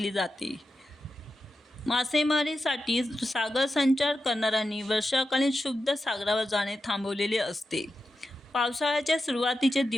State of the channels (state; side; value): normal; both; correlation 0.90